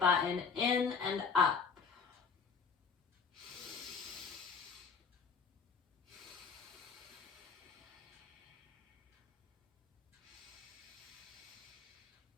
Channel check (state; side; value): quieter; right; 5.8 dB